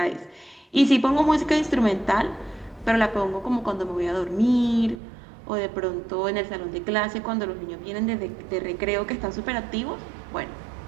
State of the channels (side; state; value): left; drops out; at 5.0 s